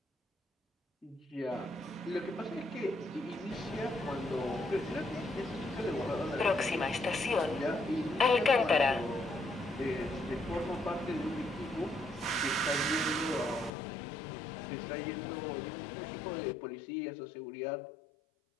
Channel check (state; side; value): drops out; right; at 13.7 s